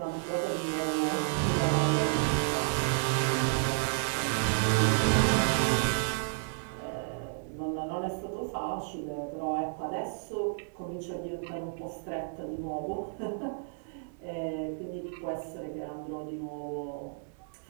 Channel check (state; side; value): silent; left; 57 dB below the other